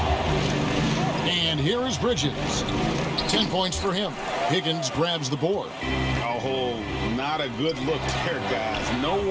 And here is Bridges. 10 points for him. Higgins grabs the board. Oh, not a good look there, guys. No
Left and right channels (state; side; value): identical; both; correlation 1.00